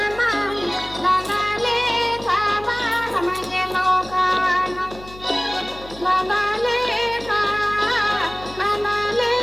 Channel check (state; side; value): noise; left; hum, 18 dB below the sound